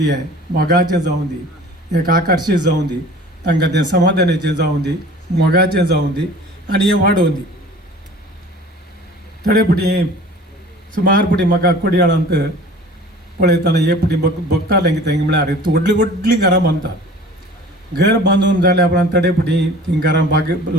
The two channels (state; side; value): normal; both; correlation 0.44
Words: मोगाचें जावं दी एक आकर्शीत जावं दी तांकां तें समाधानाचें जावं दी मोगाचें जावं दी आनी हें वाडोवन दी थोडे पुटी सुमार पुटी म्हाका कोडयाळांत पळयतना हे पुटी बघतालें कितें म्हळ्यार व्हडलीं व्हडलीं घरां बांदतात घर बांदून जाल्या उपरांत थोडे पुटी तीं घरां